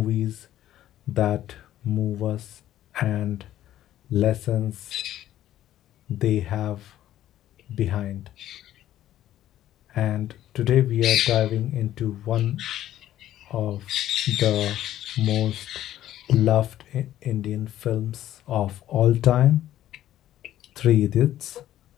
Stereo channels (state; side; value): quieter; right; 12.8 dB